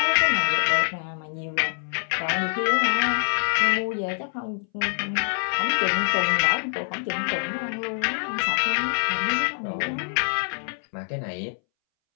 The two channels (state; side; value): silent; right; 62 dB below the other